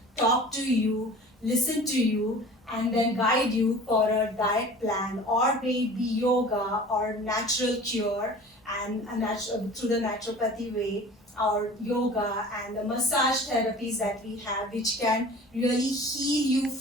talk to you, listen to you, and then guide you for a diet plan, or maybe yoga or natural cure and through the naturopathy way, or yoga and the massage therapies that we have, which can really heal you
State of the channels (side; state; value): both; normal; correlation 0.42